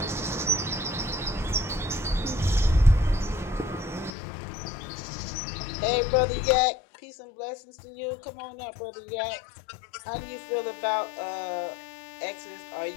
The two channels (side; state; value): right; drops out; at 4.1 s